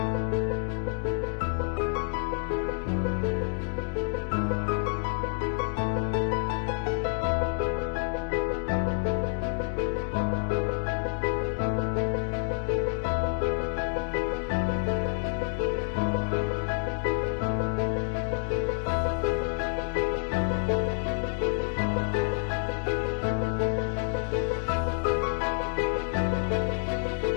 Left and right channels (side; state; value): right; silent; 59 dB below the other